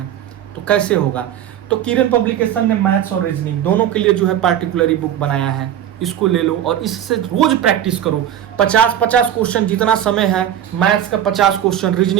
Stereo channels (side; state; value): left; quieter; 10.5 dB